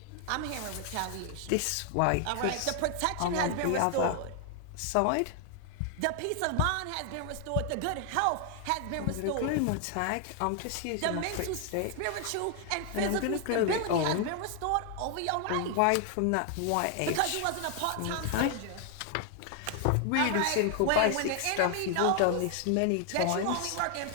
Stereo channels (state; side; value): different; both; correlation 0.00